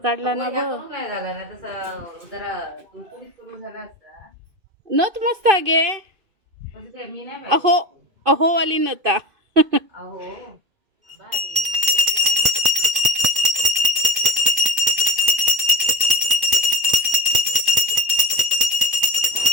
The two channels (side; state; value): left; late; 2.5 ms